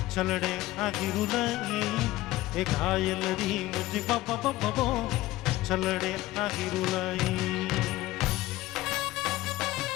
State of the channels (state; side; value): quieter; right; 17.2 dB